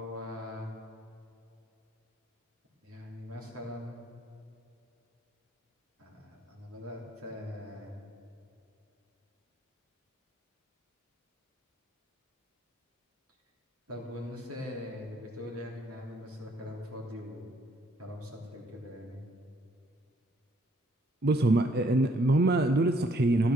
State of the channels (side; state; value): both; normal; correlation 0.66